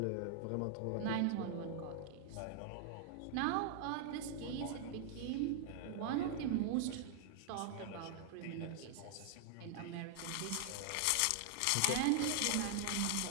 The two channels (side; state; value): both; different; correlation 0.00